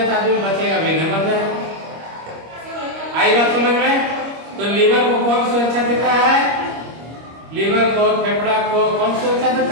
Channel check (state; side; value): late; left; 25 ms